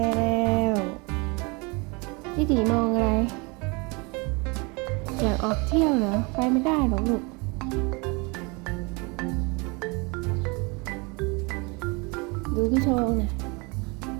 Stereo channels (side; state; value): left; quieter; 29.0 dB